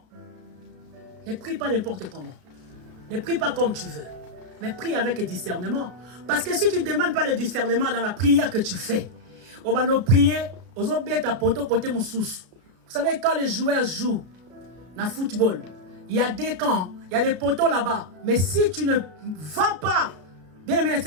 Ne prie pas n'importe comment. Ne prie pas comme tu veux. Mais prie avec discernement. Parce que si tu ne demandes pas le discernement dans la prière que tu fais, on va nous prier, on va bien ta poto côté mon sous. Vous savez, quand les joueurs jouent dans le football, il y a des camps, il y a des poteaux là-bas. Mais si tu ne vas pas, bien aimé le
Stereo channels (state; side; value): late; left; 33 ms